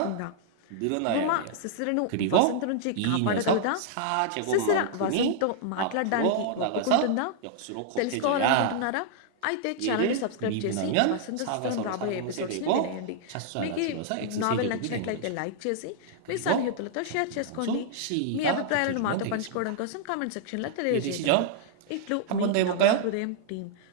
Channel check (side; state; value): both; different; correlation -0.01